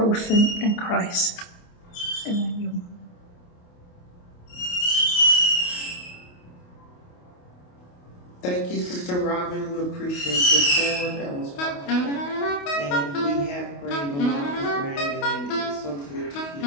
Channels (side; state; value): right; late; 28 ms